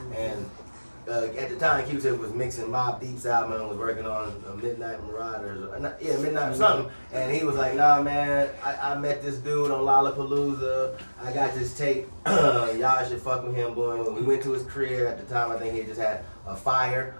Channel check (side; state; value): both; inverted; correlation -1.00